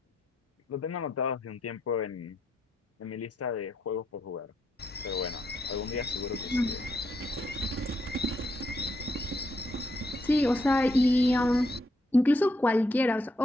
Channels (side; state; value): both; normal; correlation 0.78